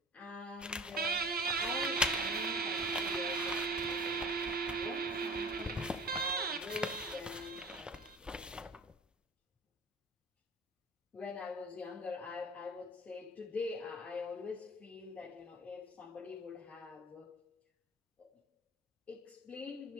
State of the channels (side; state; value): both; normal; correlation 0.41